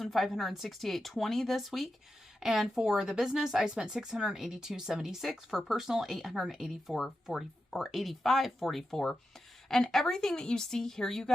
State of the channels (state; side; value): normal; both; correlation 0.90